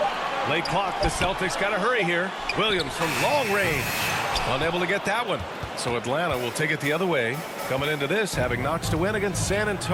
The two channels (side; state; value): both; identical; correlation 1.00